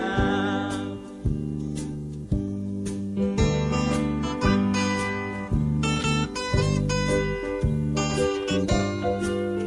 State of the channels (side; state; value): both; identical; correlation 1.00